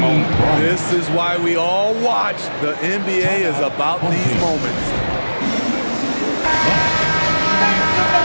moment. This is why we all watch. The NBA is about these moments.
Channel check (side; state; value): both; inverted; correlation -1.00